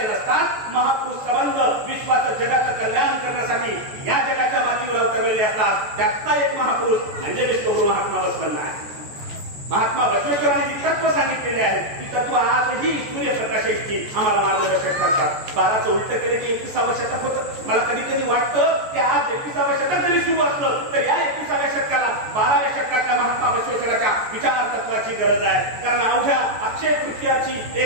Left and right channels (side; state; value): left; late; 14 ms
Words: नसतात. महापुरुष संबंध विश्वाचं, जगाचं कल्याण करण्यासाठी या जगाच्या मातीवर अवतरलेले असतात. त्यातला एक महापुरुष म्हणजे विश्वगुरु महात्मा बसवेश्वर आहे. महात्मा बसवेश्वरांनी जी तत्व सांगितलेले आहेत ती तत्व आजही सूर्यप्रकाशाची आम्हाला मार्गदर्शक करतात. 12चं उलट केलं की 21व्या शतक होतं. मला कधी कधी वाटतं की आज 21व्या शतक जरी सुरू असलं तर या 21व्या शतकाला 12व्या शतकातल्या महात्मा बसवेश्वराच्या विचार तत्वाची गरज आहे. कारण अवघ्या अक्षय तृतीयाची